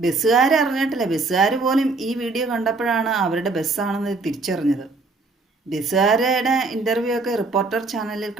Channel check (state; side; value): quieter; left; 3.6 dB